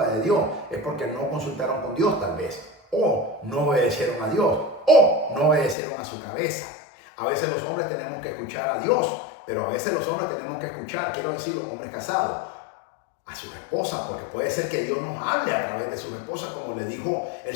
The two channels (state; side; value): drops out; right; at 5.8 s